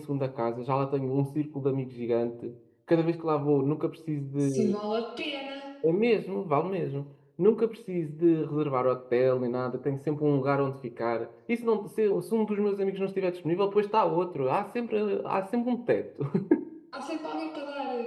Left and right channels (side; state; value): both; identical; correlation 1.00